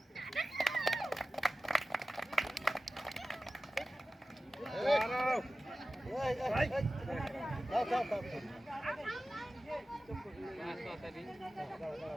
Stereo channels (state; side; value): normal; both; correlation 0.95